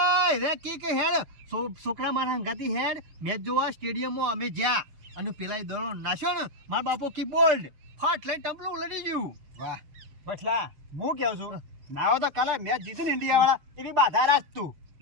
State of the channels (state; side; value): late; left; 6.8 ms